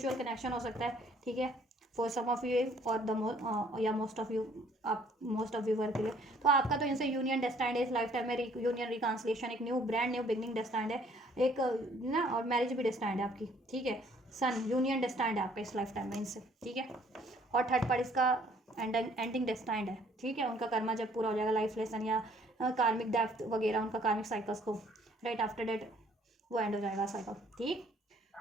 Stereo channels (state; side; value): normal; both; correlation 0.60